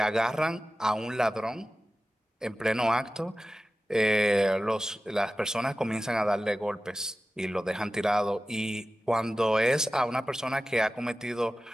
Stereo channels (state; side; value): normal; both; correlation 0.95